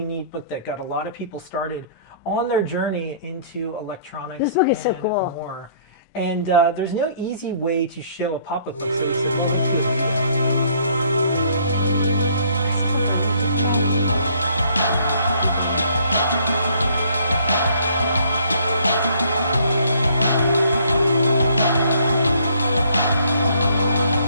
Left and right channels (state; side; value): inverted; both; correlation -0.60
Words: neat book that got a lot of people started on their journey into electronics. This book is so cool. More. And there's no easy way to show a pop-up book. So this is all